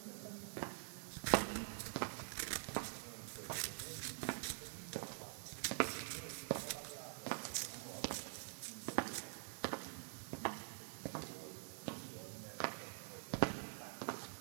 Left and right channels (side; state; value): left; silent; digital silence